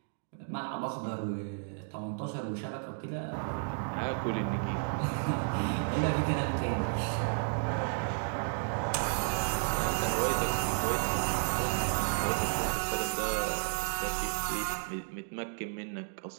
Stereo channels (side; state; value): left; silent; 56 dB below the other